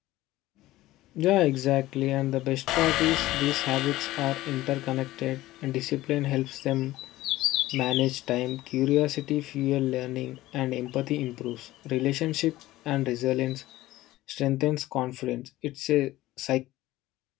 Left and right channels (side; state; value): right; quieter; 16.6 dB